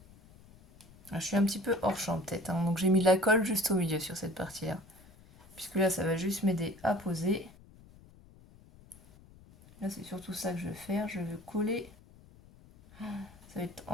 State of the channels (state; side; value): noise; left; rumble, 23 dB below the sound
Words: Je suis un petit peu hors champ peut-être, hein. Donc j'ai mis de la colle juste au milieu sur cette partie-là. Puisque là, ça va juste m'aider à poser. Là, c'est surtout ça que je vais faire. Je veux coller. Ça va être